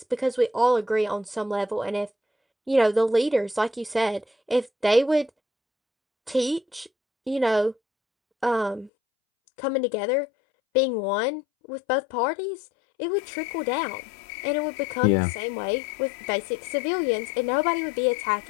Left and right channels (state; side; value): drops out; right; at 8.9 s